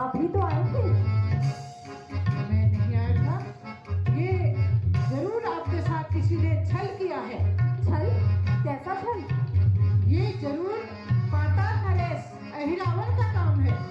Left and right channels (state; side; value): identical; both; correlation 1.00